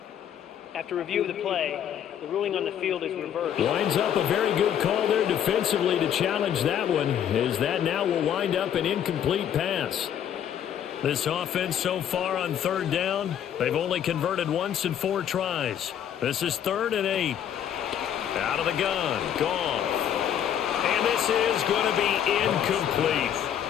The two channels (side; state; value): right; quieter; 9.6 dB